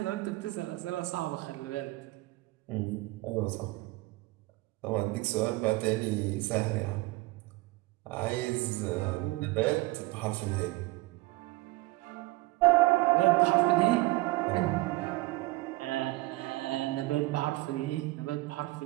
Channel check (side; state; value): left; quieter; 21.0 dB